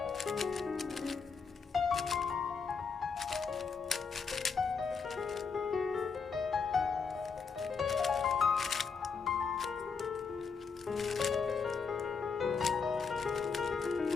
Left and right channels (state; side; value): quieter; right; 5.5 dB